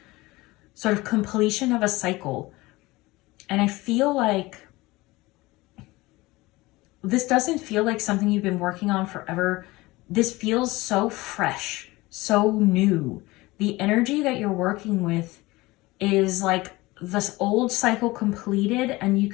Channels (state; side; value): quieter; right; 20.8 dB